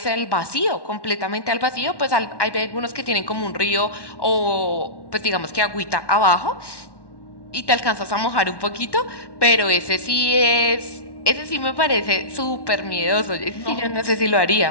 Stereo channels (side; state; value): right; late; 1.1 ms